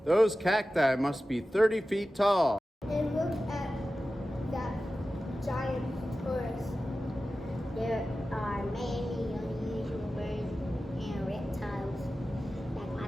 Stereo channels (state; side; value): normal; both; correlation 0.94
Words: Those cacti must be 30 feet tall. And look at that giant torus. There are many unusual birds and reptiles like